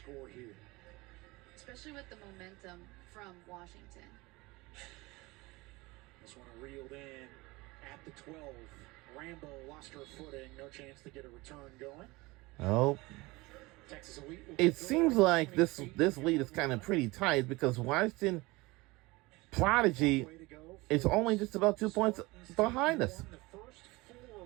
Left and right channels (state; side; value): quieter; left; 22.5 dB